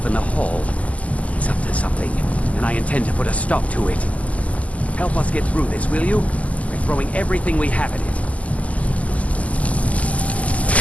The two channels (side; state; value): right; late; 0.071 ms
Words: in the hall. He's up to something, and I intend to put a stop to it. Help us get through this, will you? We're throwing everything we have at it.